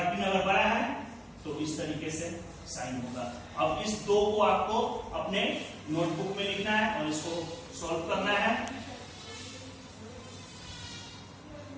अगर बड़ा है तो इस तरीके से साइन होगा। अब इस दो को आपको अपने नोटबुक में लिखना है और इसको सॉल्व करना है।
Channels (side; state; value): both; identical; correlation 1.00